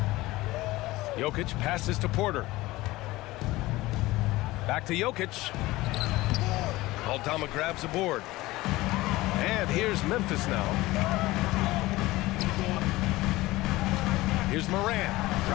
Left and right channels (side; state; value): right; quieter; 18.9 dB